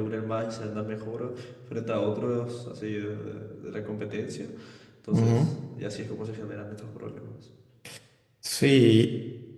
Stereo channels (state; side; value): identical; both; correlation 1.00